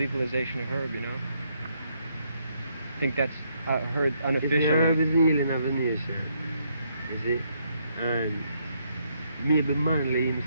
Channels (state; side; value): inverted; both; correlation -0.74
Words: of herb, you know? I think that's heard unofficially. Herb is the healing of the nation, you see? And maybe Manley